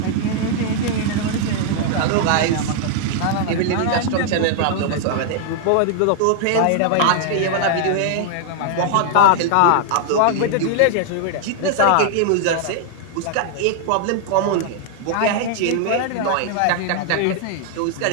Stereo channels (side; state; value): both; different; correlation -0.01